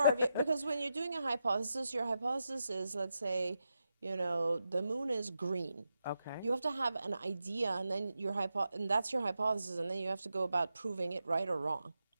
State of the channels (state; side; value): inverted; both; correlation -0.87